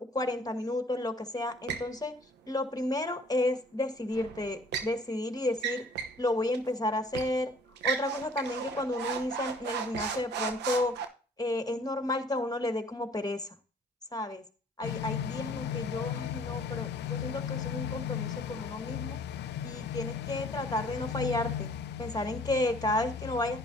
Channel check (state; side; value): normal; both; correlation 0.55